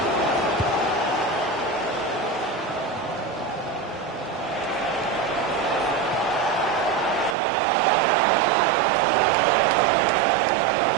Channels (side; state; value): left; drops out; at 7.4 s